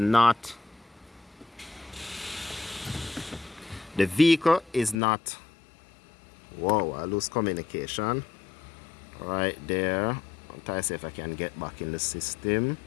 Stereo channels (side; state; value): right; drops out; at 5.0 s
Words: whoa, I lose communication right there. I'll try to see if I can get back in the system.